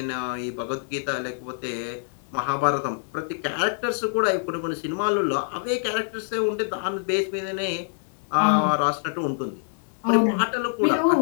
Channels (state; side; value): silent; right; digital silence